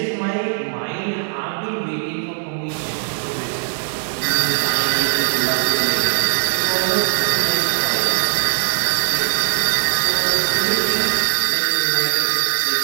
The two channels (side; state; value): left; silent; digital silence